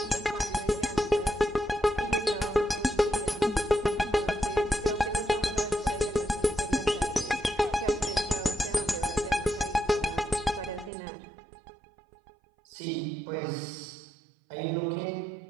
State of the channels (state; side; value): drops out; left; at 10.9 s